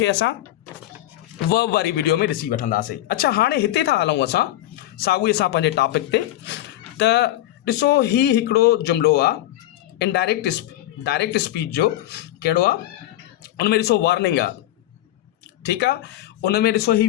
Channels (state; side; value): quieter; right; 14.5 dB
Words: असां वर्ब वारी वीडियो में ॾिसी वठंदासीं। अच्छा, हाणे हिते था हलूं असां साॻिए सां पंहिंजे टॉपिक ते। त ॾिसो, ही हिकिड़ो जुमिलो आहे डायरेक्ट स्पीच जो। कहिड़ो आहे? उन में ॾिसो वार्निंग आहे, ठीकु आहे। उन में ॾिसो ही